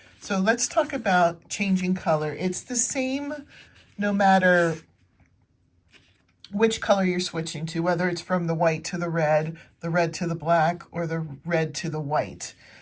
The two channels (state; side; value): identical; both; correlation 1.00